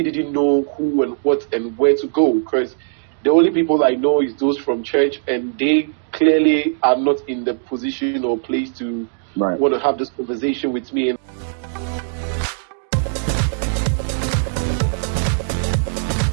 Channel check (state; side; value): silent; left; digital silence